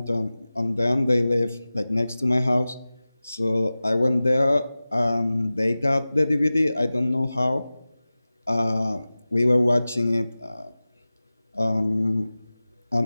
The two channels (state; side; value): inverted; both; correlation -0.97